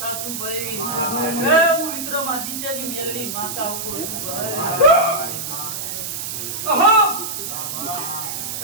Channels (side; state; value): right; noise; hiss, 5 dB below the sound